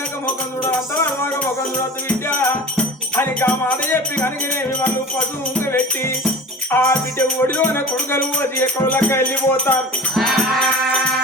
ముఖం చూడాలి అంతవరకు ముఖం చూడద్దు బిడ్డ అని ఆ మాట చెప్పి కనుకనేమి వాళ్ళు పశువు ఉంగ పెట్టి ఆ బిడ్డ ఒడిలోన కొడుకలు పోసి ఎక్కడలక్క వెళ్ళిపోతారు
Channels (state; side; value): normal; both; correlation 0.37